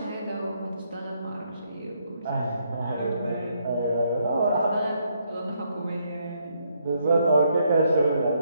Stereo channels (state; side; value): inverted; both; correlation -0.74